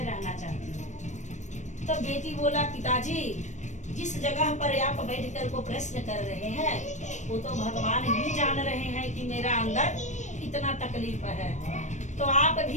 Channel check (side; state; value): right; late; 0.35 ms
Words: रहना चाहती हो? तो बेटी बोला, पिताजी जिस जगह पर आप बैठकर को प्रश्न कर रहे हैं वो तो भगवान ही जान रहे हैं कि मेरा अंदर कितना तकलीफ है। तो आप